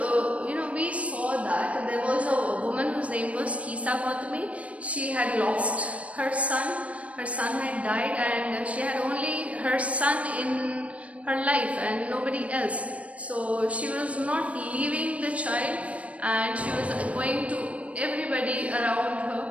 we saw that there was a woman whose name was Kisa Gautami. She had lost her son. Her son had died, and she had only her son in her life and nobody else. So she was not leaving the child, and she was going to everybody around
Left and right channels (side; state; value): left; late; 0.065 ms